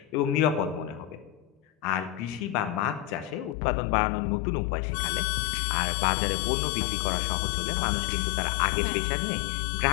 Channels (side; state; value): right; drops out; at 3.6 s